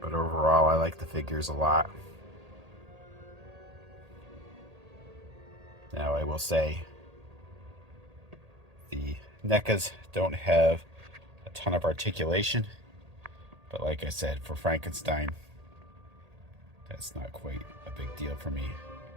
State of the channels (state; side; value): late; left; 1.8 ms